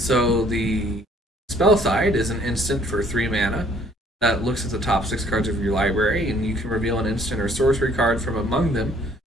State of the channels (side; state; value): both; normal; correlation 0.61